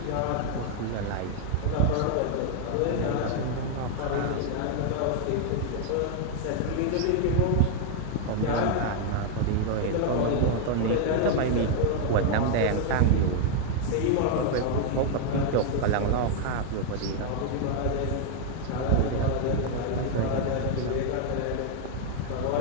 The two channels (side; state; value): both; different; correlation 0.00